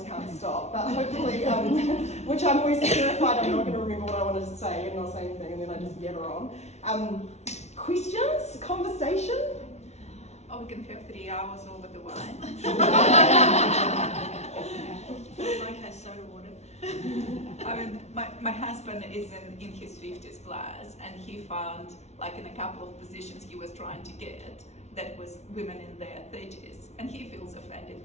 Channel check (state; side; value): late; right; 0.32 ms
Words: can't stop. But hopefully, which I'm always terrified I'm not going to remember what I wanted to say and not say anything, and then I just yabber on. Questions? Conversation? Oh, we can have 3 hours over the wine. Like has soda water. I mean, my husband is in his 50s plus, and he found, like in a couple of positions he was trying to get, that was women in their 30s, and he feels offended